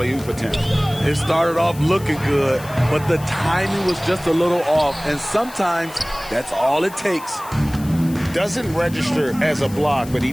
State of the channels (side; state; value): left; noise; hiss, 18 dB below the sound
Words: attempt. It started off looking good, but the timing was just a little off, and sometimes that's all it takes. Doesn't register as a block, but he